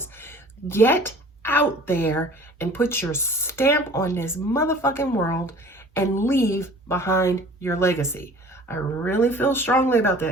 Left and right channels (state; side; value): normal; both; correlation 0.47